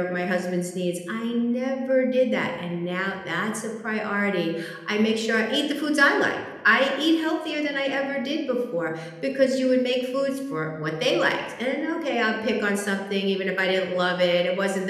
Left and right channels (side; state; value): both; identical; correlation 1.00